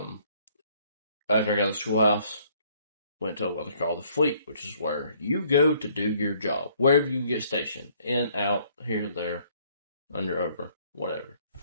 after I got to the schoolhouse, went to what they call the fleet, which is where you go to do your job, wherever you get stationed, in, out, here, there, under, over, whatever.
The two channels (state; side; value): inverted; both; correlation -0.63